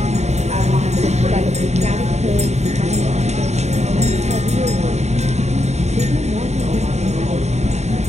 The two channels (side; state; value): left; late; 0.32 ms